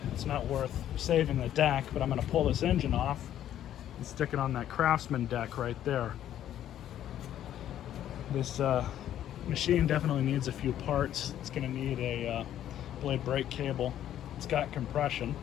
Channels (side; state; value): right; quieter; 11.3 dB